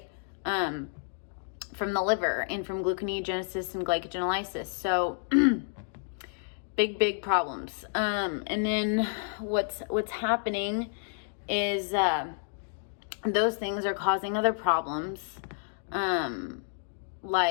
From the liver and from gluconeogenesis and glycogenolysis. So big problems. And then what's happening is those things are causing other problems.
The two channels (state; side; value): silent; right; digital silence